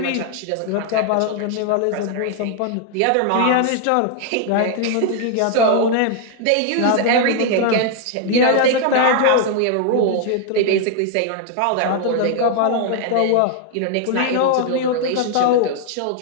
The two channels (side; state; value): both; different; correlation 0.00